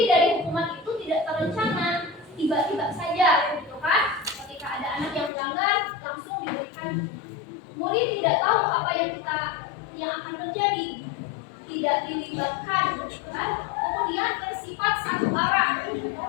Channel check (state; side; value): drops out; right; at 5.3 s